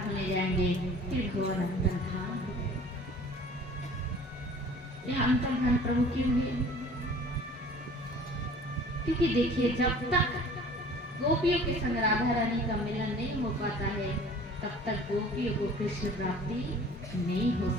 जाएंगे, फिर भगवान अंतर्धान हो गए। यह अंतर्धान प्रभु क्यों हुए? क्योंकि देखिए, जब तक गोपियों के संग राधा रानी का मिलन नहीं हो पाता है, तब तक गोपियों को कृष्ण प्राप्ति नहीं हो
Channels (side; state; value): both; normal; correlation 0.48